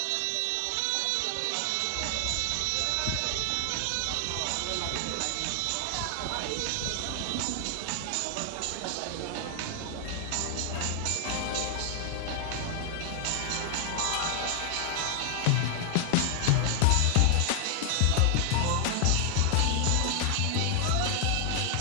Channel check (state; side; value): different; both; correlation 0.00